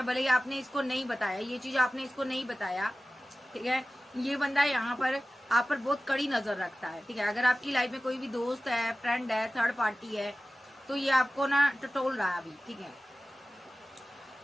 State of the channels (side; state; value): both; normal; correlation 0.96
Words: भले ही आपने इसको नहीं बताया, ये चीज आपने इसको नहीं बताया, ठीक है। ये बंदा यहाँ पर आप पर बहुत कड़ी नजर रखता है, ठीक है। अगर आपकी लाइफ में कोई भी दोस्त है, फ्रेंड है, थर्ड पार्टी है, तो ये आपको ना टटोल रहा है अभी, ठीक है।